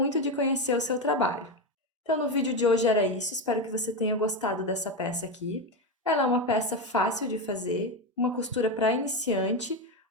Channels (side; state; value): both; normal; correlation 0.13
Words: de conhecer o seu trabalho. Então, no vídeo de hoje era isso, espero que você tenha gostado dessa peça aqui. Ela é uma peça fácil de fazer, uma costura para iniciante.